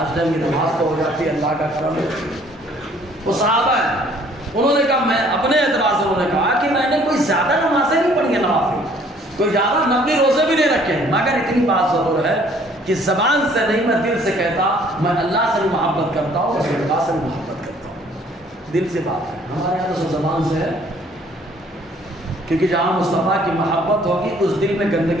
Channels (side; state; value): both; normal; correlation 0.58